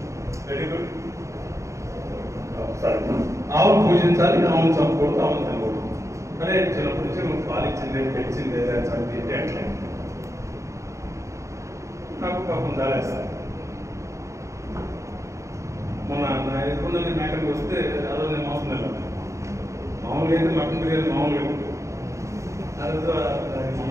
Very good. ఆవును పూజించాలి, ఆవును చంపుకూడదు, ఆవును తినకూడదు. అదే చిన్నప్పటి నుంచి నువ్వు పాలిచ్చిందే పెంచిందే చంపి అట్లే నాకు పాపం దాలేస్తాను. మొన్న నా ఎదుగుందని మేకకి వస్తే అదో నేను మోసం వెళ్ళాను. మామూలుగా అయితే మటన్ బిర్యానీ మామూలుగా ఉంటుంది. తర్వాత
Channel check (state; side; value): late; left; 0.14 ms